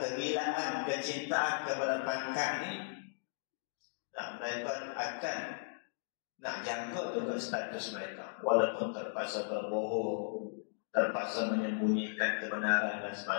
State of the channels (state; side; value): silent; right; digital silence